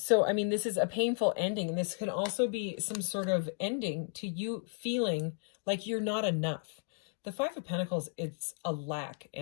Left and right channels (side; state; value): right; silent; 55 dB below the other